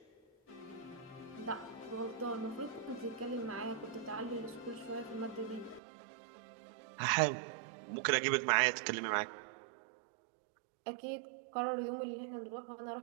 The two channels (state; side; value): drops out; left; at 5.8 s